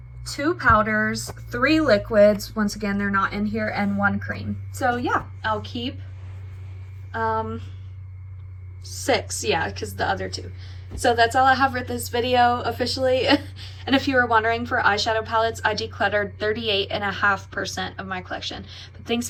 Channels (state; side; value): identical; both; correlation 1.00